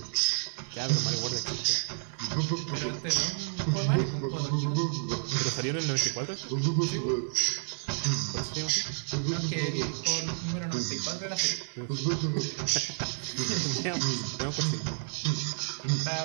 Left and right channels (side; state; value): left; silent; 58 dB below the other